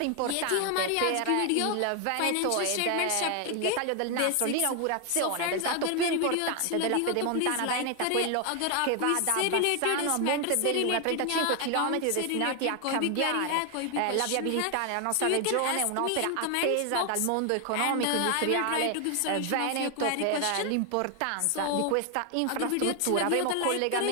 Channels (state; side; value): different; both; correlation 0.00